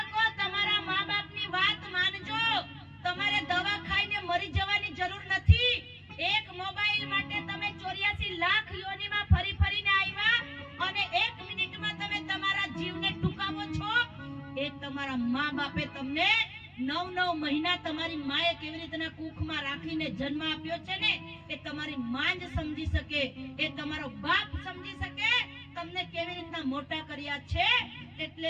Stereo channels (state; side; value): identical; both; correlation 1.00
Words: તમારા મા બાપની વાત માનજો। તમારે દવા ખાઈને મરી જવાની જરૂર નથી। એક મોબાઈલ માટે તમે 84 લાખ યોનીમાં ફરી ફરીને આવ્યા અને 1 મિનિટમાં તમે તમારા જીવને ટૂંકાવો છો। એ તમારા મા બાપે તમને 9 મહિના તમારી માએ કેવી રીતના કુખમાં રાખીને જન્મ આપ્યો છે ને, એ તમારી માં જ સમજી શકે, એ તમારો બાપ સમજી શકે તમને કેવી રીતના મોટા કર્યા છે। એટલે